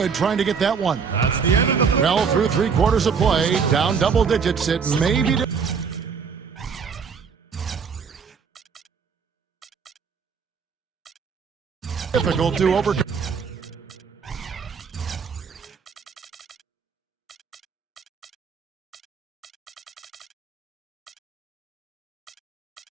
trying to get that one. That's the end of the Well, through 3 quarters of play, down double digits. It may be difficult to overcome.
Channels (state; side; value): quieter; left; 6.1 dB